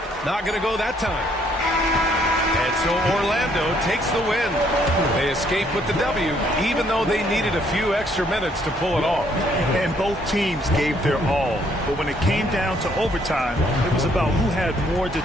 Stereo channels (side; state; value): both; normal; correlation 0.67